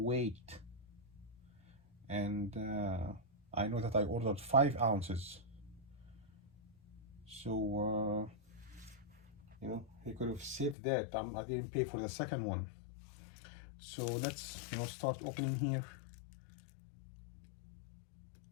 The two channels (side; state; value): right; drops out; at 10.8 s